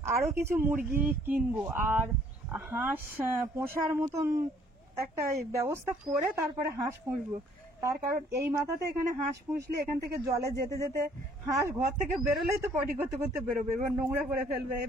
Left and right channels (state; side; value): normal; both; correlation 0.61